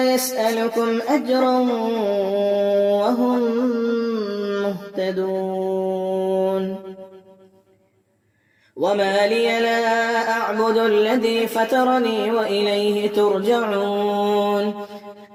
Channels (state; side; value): identical; both; correlation 1.00